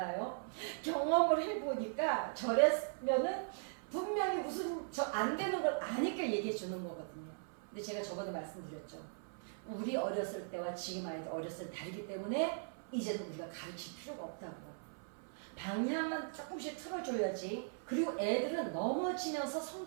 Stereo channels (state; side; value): silent; left; 52 dB below the other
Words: 경험을 해보니까 저랬으면은 분명히 무슨 저 안 되는 걸 아니까 얘기해 주는 거거든요. 근데 제가 저번에 말씀드렸죠. 우리 어렸을 때와 지금 아이들 어렸을 때 다르기 때문에 이제는 우리가 가르칠 필요가 없다고. 방향만 조금씩 틀어줘야지. 그리고 애들은 넘어지면서